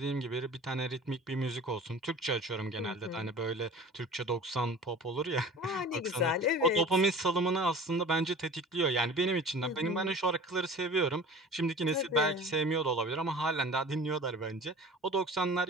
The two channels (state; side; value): normal; both; correlation 0.41